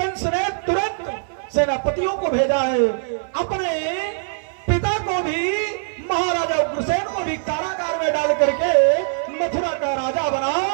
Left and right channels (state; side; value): silent; left; digital silence